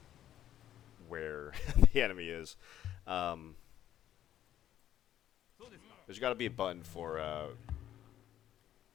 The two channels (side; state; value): right; quieter; 11.7 dB